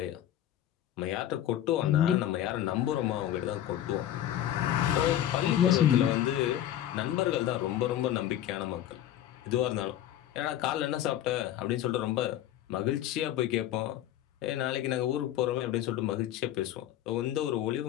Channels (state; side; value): quieter; right; 12.0 dB